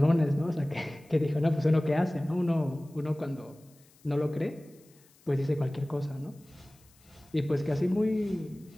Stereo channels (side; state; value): left; noise; hiss, 29 dB below the sound